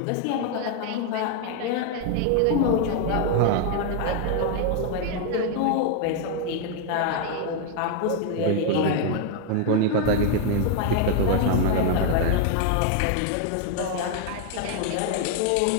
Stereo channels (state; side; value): different; both; correlation 0.00